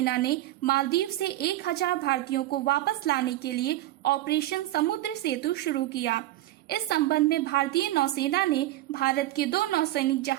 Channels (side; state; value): left; quieter; 15.7 dB